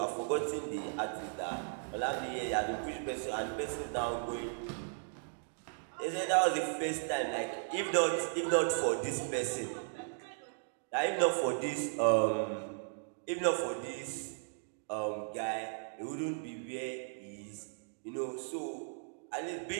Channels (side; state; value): left; silent; digital silence